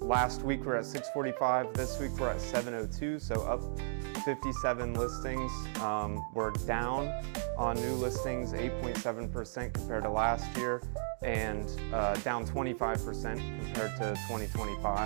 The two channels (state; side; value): silent; left; digital silence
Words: week we're at 645. This week we're at 702, so up 57 listings. We're down on new listings 8.7% compared to last year, and down 25% compared to